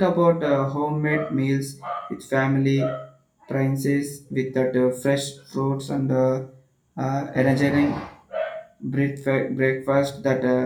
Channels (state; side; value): identical; both; correlation 1.00